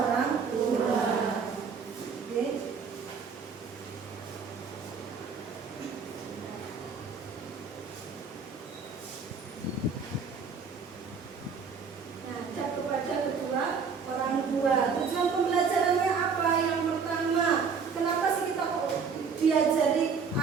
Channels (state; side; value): quieter; left; 5.7 dB